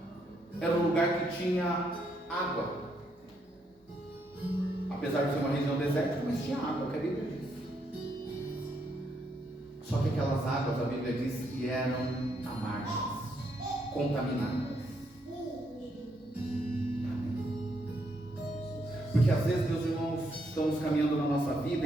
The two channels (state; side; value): normal; both; correlation 0.76